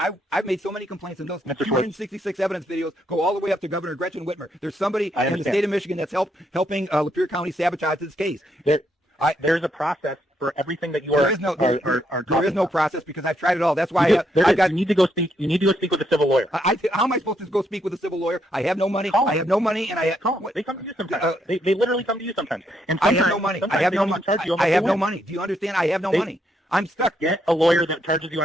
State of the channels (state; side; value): normal; both; correlation 0.76